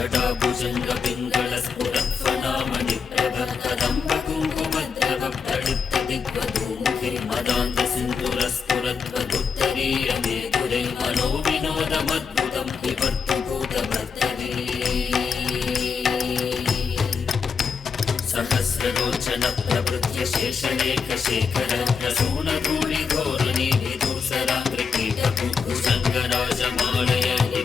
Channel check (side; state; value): right; quieter; 5.8 dB